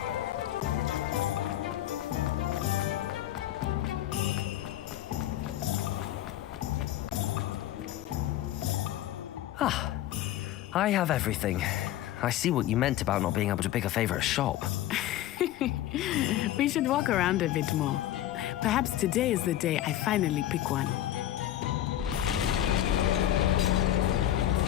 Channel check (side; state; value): right; quieter; 13.0 dB